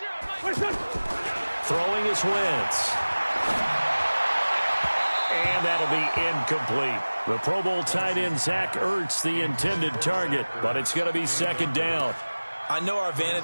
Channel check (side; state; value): both; inverted; correlation -1.00